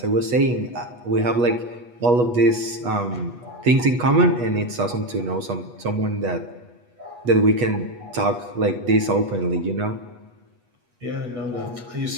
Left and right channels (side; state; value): left; late; 8.3 ms